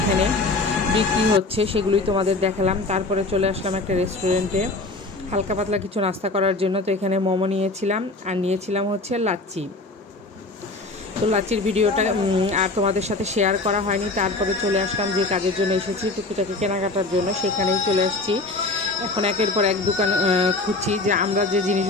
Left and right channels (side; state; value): right; quieter; 3.2 dB